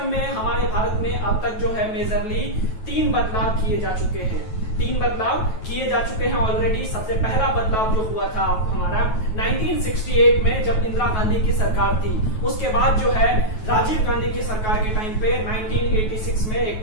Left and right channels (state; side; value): late; right; 9.2 ms